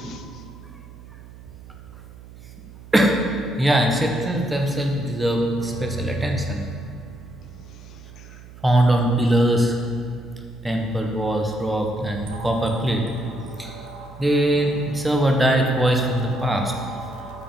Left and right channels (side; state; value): right; noise; hum, 18 dB below the sound